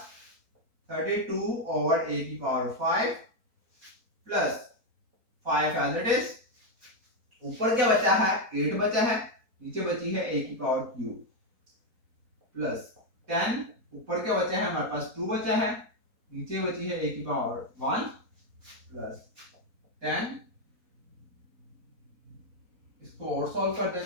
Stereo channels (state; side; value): late; left; 4.3 ms